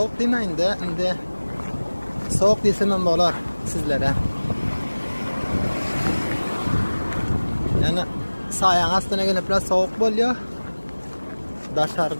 demaydi, endi sovuq desam ham bo'lar sizlarga. Yani sayang aslına gelip biraz soğuk oluyor.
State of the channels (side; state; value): both; inverted; correlation -1.00